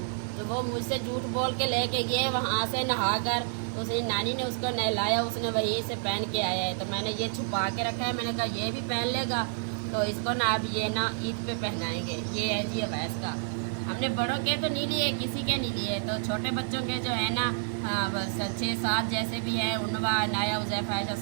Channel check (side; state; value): left; silent; digital silence